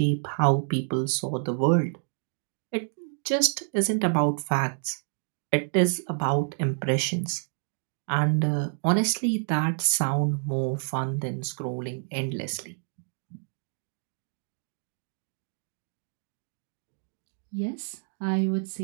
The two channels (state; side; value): silent; left; digital silence